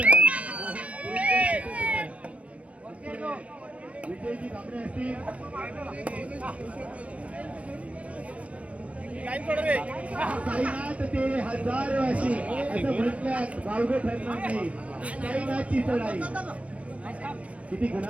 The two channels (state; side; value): late; left; 0.065 ms